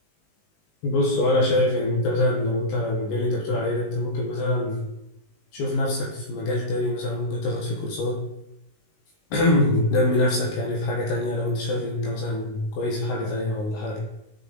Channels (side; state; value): right; late; 19 ms